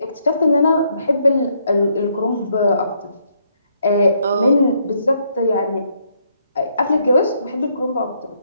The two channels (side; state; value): both; inverted; correlation -0.73